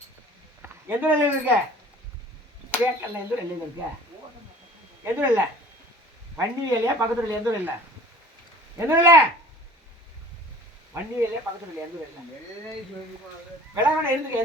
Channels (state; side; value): normal; both; correlation 0.46